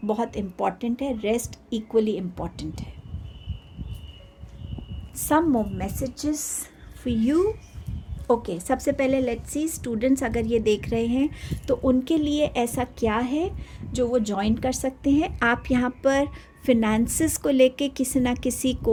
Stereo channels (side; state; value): both; identical; correlation 1.00